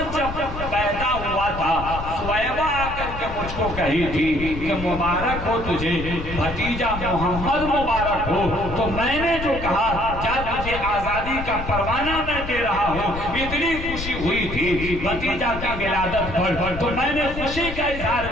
جب پیدا ہوا تھا، سویبہ آ کر کے مجھ کو کہی تھی کہ مبارک ہو تجھے بھتیجا محمد مبارک ہو، تو میں نے جو کہا کیا تجھے آزادی کا پروانہ میں دے رہا ہوں، اتنی خوشی ہوئی تھی بھتیجا کی ولادت پر، تو میں نے خوشی کا اظہار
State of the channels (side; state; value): left; noise; rumble, 8 dB below the sound